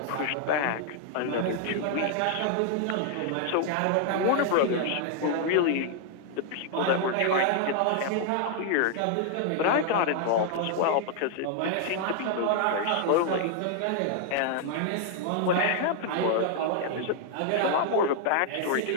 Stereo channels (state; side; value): different; both; correlation -0.01